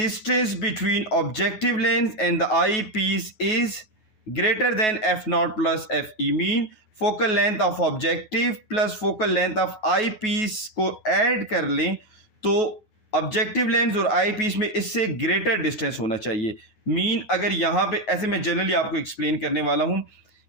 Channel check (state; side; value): late; right; 9.3 ms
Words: between objective lens and the eyepiece is greater than f naught plus f e. Mean focal length of objective plus focal length of eyepiece को ऐड कर लें तो ऑब्जेक्टिव लेंस और आई piece में इससे greater distance होना चाहिए। Mean अगर यहाँ पे ऐसे मैं जनरली आपको एक्सप्लेन करने वाला हूँ